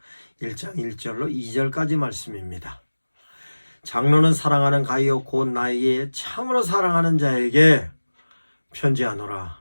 1장 1절로 2절까지 말씀입니다. 장로는 사랑하는 가이오 곧 나에게 참으로 사랑하는 자에게 편지하노라.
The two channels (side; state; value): both; inverted; correlation -1.00